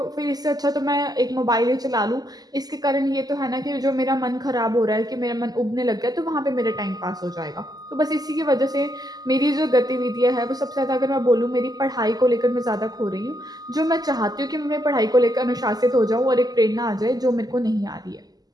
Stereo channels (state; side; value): late; left; 0.19 ms